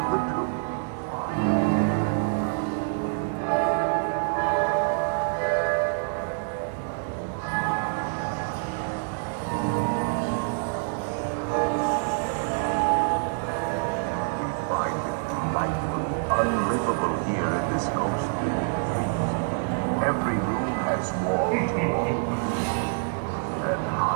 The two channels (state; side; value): silent; left; digital silence